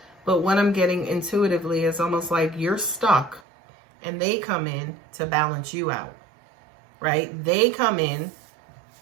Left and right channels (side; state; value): left; drops out; at 3.4 s